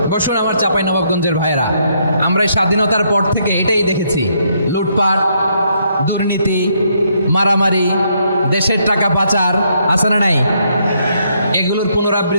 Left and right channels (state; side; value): inverted; both; correlation -0.73